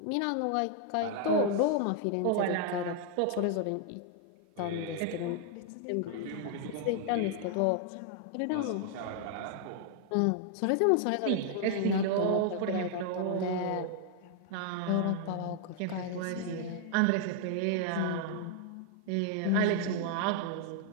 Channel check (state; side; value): different; both; correlation 0.00